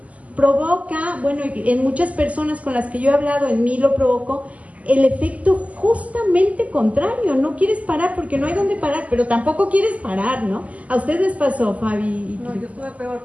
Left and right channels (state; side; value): late; left; 0.071 ms